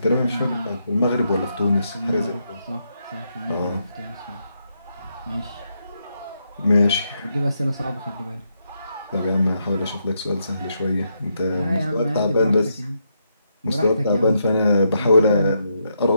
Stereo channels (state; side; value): inverted; both; correlation -0.80